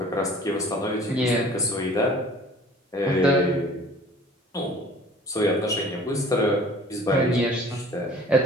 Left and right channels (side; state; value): both; normal; correlation 0.48